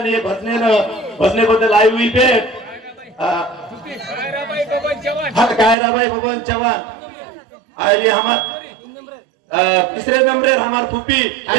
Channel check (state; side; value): drops out; left; at 5.8 s